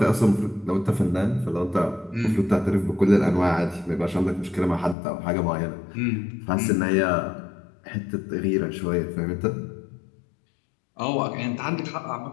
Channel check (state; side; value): drops out; right; at 5.0 s